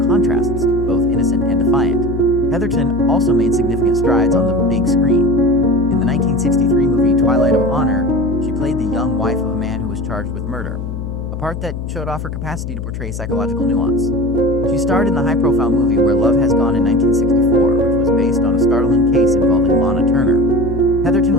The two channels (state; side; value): noise; left; hum, 6 dB below the sound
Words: contrasts, both innocent and defiant. Heatherton also made significant strides on the big screen. In the 1963 movie Twilight of Honor, she played the young wife of a man who was charged with murder, a part that showed off her capacity to portray psychological nuance. She starred in the high-profile movie Where Love Has Gone in 1964, which was based on a startling case involving Lana Turner. Heatherton